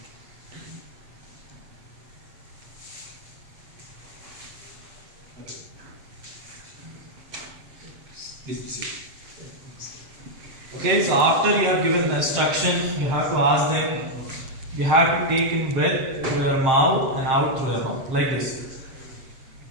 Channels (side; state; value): left; late; 7.7 ms